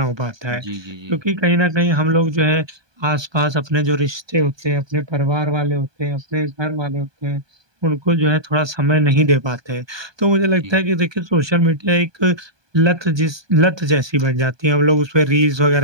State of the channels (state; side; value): late; left; 1.2 ms